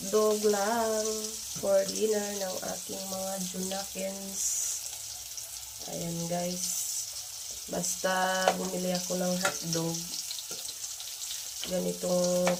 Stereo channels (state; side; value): identical; both; correlation 1.00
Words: lang for dinner ng aking mga Junakins. Ayan guys. Basta bumili ako ng hotdog, ganitong